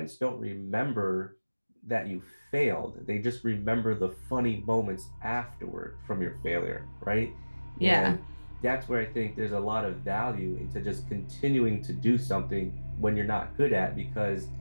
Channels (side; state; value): both; inverted; correlation -1.00